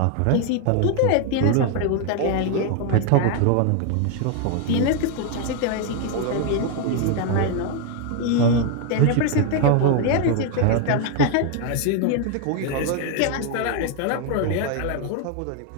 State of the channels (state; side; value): different; both; correlation 0.01